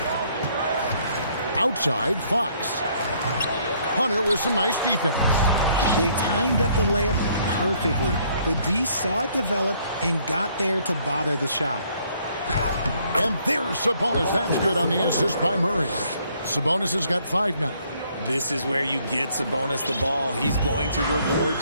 Outside, Fox. Hunter with some nice defense. They timed up the layup perfectly. The D saw it develop and got there to bother the shot. And there's Sabonis. That's good on the assist by Murray. Sabonis has got 5 now. This is where you get Sabonis the ball. He's going to reward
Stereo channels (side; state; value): both; inverted; correlation -0.65